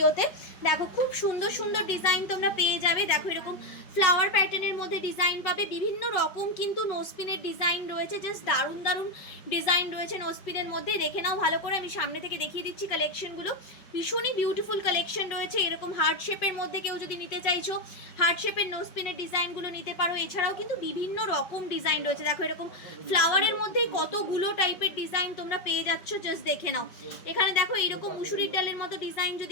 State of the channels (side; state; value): right; late; 5.0 ms